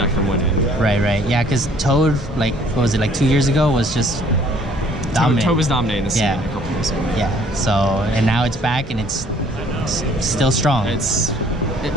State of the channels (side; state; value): both; normal; correlation 0.59